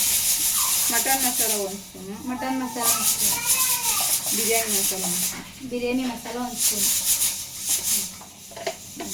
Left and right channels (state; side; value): identical; both; correlation 1.00